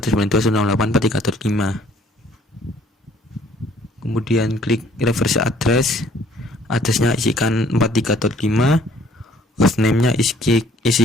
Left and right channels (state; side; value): normal; both; correlation 0.59